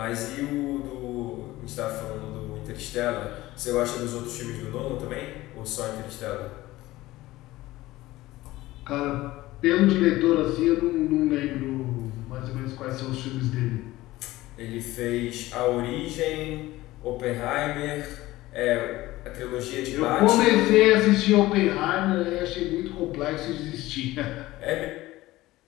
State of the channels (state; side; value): quieter; right; 17.6 dB